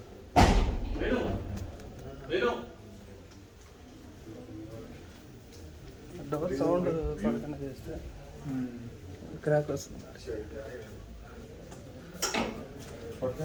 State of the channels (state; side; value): identical; both; correlation 1.00